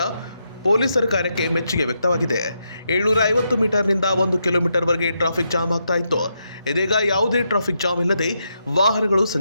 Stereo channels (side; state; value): both; inverted; correlation -0.81